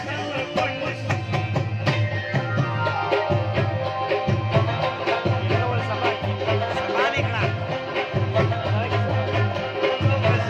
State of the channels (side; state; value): both; identical; correlation 1.00